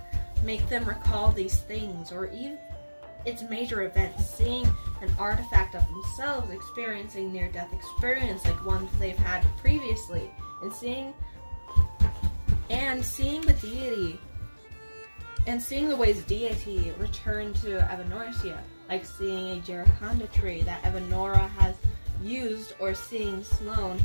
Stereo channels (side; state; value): both; inverted; correlation -1.00